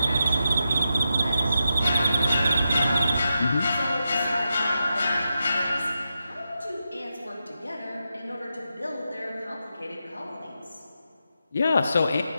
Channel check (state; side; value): inverted; both; correlation -0.88